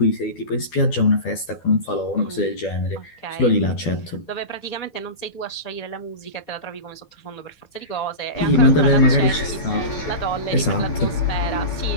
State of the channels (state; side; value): late; right; 12 ms